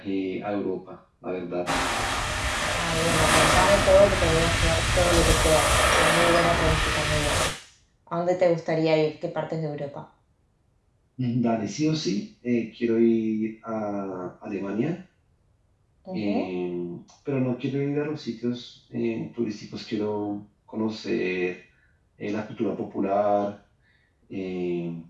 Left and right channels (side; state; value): both; identical; correlation 1.00